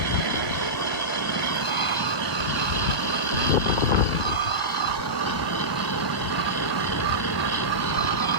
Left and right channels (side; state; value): right; late; 1.2 ms